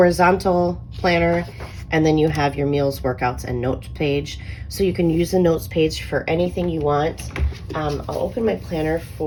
planner, and then you have your meals, workouts, and notes page. So you can use the notes page for anything you want. I'll open my planner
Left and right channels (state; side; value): identical; both; correlation 1.00